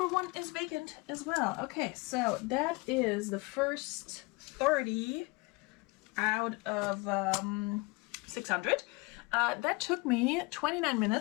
1 is vacant as well. Okay, so that is the first 30 out of 600. That took me 29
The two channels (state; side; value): quieter; right; 26.0 dB